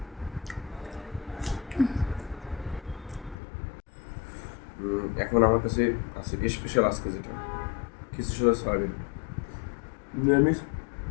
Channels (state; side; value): drops out; right; at 3.4 s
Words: এখন আমার কাছে আছে স্পেশাল আজকে যেটা খিচুড়ি সাথে সয়াবিন। নিরামিষ